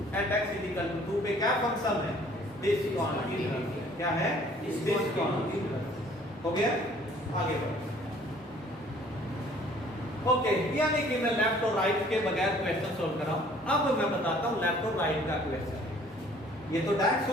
at x is equal to 2 पे क्या फंक्शन है? discontinuous। क्या है? discontinuous। हो गया? आगे बढ़ो। ओके, यानी कि मैं लेफ्ट और राइट के बगैर क्वेश्चन सोल्व कर रहा हूं। अब मैं बताता हूं लेफ्ट और राइट का क्वेश्चन। ये तो डायरेक्ट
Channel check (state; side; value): normal; both; correlation 0.56